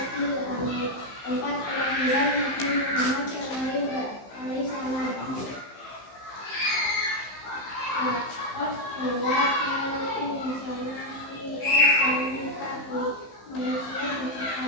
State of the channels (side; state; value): right; late; 15 ms